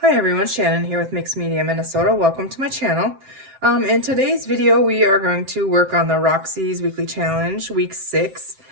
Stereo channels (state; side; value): late; left; 7.6 ms